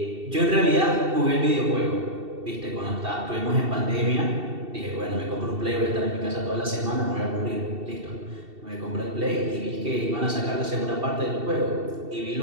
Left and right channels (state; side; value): late; left; 2.7 ms